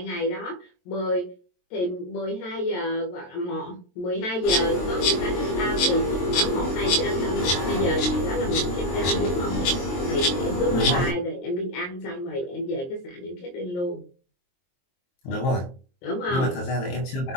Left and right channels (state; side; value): late; right; 22 ms